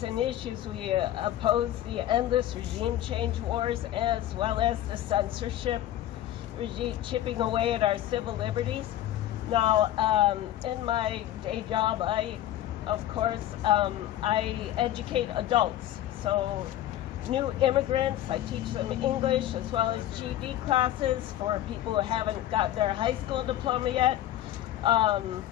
and issues, we oppose the endless regime change wars, as well as the censorship regime chipping away at our civil liberties. Now, in my day job, I educate adults. So new immigrants, I teach them English as well as GED classes for people who haven't got their high school diploma yet.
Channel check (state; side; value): quieter; right; 12.8 dB